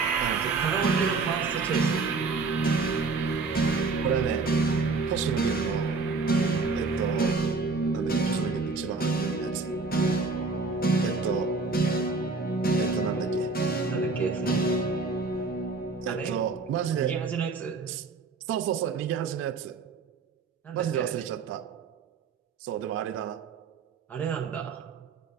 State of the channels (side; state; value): left; quieter; 4.1 dB